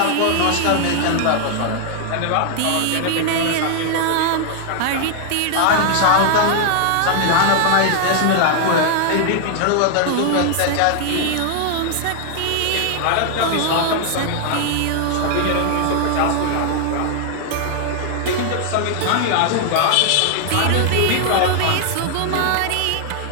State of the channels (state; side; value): different; both; correlation 0.00